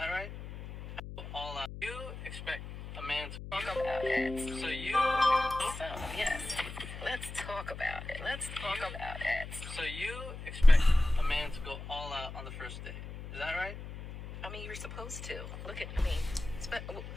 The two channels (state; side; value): noise; left; hum, 10 dB below the sound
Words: right? All out. You expect a man to talk about it. So Yes. Let's talk about it. Let's talk about it. So you expect a man to go all out on the first date. Is that right? I mean, you're supposed to.